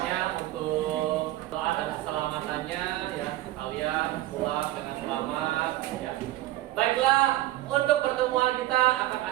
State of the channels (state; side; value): quieter; left; 15.9 dB